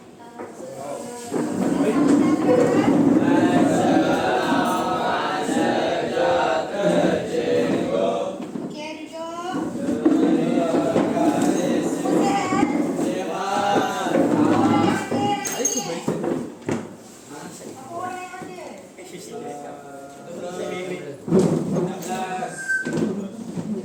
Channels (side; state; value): both; identical; correlation 1.00